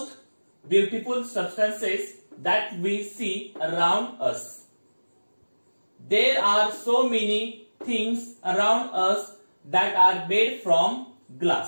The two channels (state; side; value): inverted; both; correlation -1.00